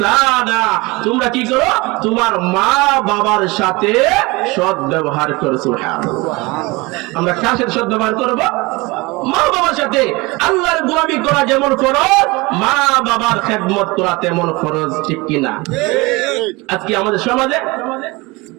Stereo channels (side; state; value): left; quieter; 24.0 dB